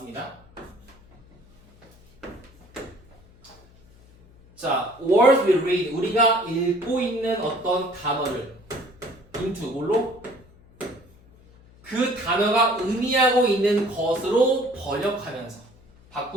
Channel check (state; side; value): noise; left; hum, 26 dB below the sound